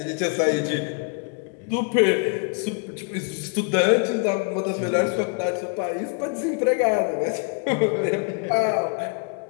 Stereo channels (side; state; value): right; quieter; 36.3 dB